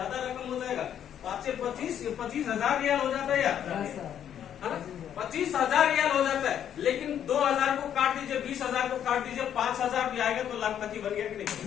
रकम हो जाएगा। 5 से 25,000 रियाल हो जाता है यार, है ना? 25,000 रियाल हो जाता है। लेकिन 2,000 को काट दीजिए, 20,000 को काट दीजिए, 5,000 भी आएगा तो लाखपति बन गया कि नहीं?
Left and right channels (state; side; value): quieter; right; 9.7 dB